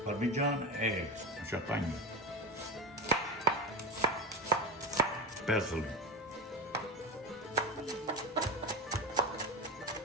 Parmigiano e champagne. Parsley.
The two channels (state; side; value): normal; both; correlation 0.22